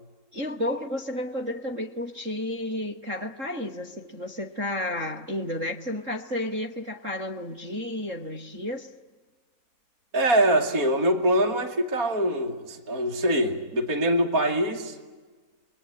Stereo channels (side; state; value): left; late; 4.2 ms